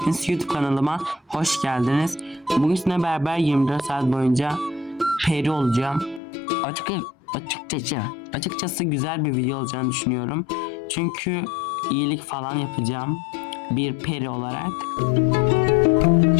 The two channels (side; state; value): right; drops out; at 6.2 s